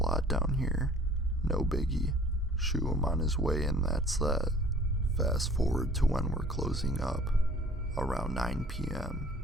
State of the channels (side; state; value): both; normal; correlation 0.51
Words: down here. No biggie. Shoo him on his way and that's that. Fast forward to when we're closing up. Around 9 p.m.